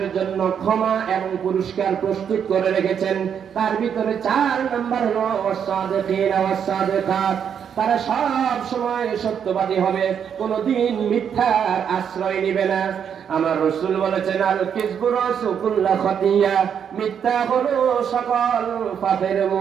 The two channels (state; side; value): quieter; left; 7.9 dB